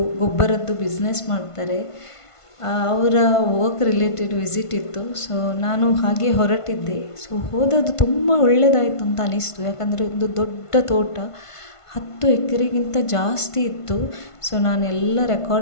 ಗೊಬ್ಬರದ್ದು ಬಿಸ್ನೆಸ್ ಮಾಡ್ತಾರೆ. ಅವರ ವರ್ಕ್ ರಿಲೇಟೆಡ್ ವಿಸಿಟ್ ಇತ್ತು. ಸೊ ನಾನು ಹಾಗೆ ಹೊರಟಿದ್ದೆ. ಸೊ ಹೋದದ್ದು ತುಂಬ ಒಳ್ಳೆಯದಾಯಿತು ಅಂತ ಅನ್ನಿಸ್ತು. ಯಾಕಂದರೆ ಒಂದು ದೊಡ್ಡ ತೋಟ, 10 ಎಕರೆಗಿಂತ ಜಾಸ್ತಿ ಇತ್ತು. ಸೊ ನಾನೆಲ್ಲ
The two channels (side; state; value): right; late; 1.5 ms